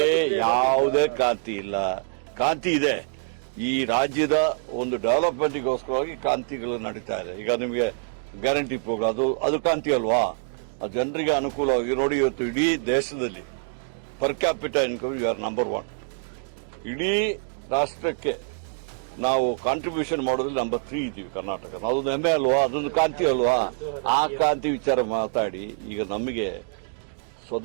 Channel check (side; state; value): left; silent; 62 dB below the other